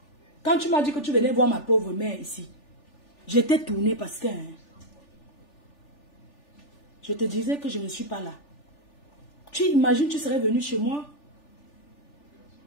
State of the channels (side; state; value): right; late; 3.4 ms